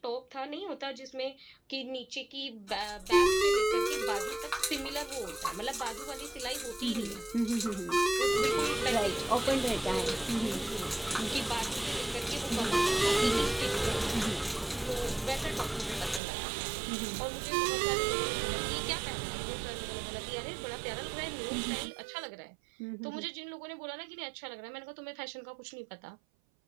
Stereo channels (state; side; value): drops out; left; at 16.2 s